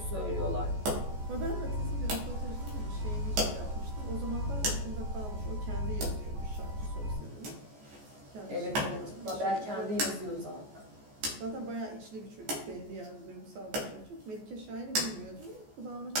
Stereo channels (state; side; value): late; left; 14 ms